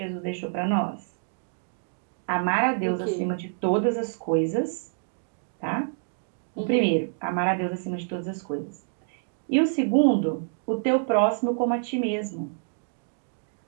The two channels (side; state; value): left; silent; digital silence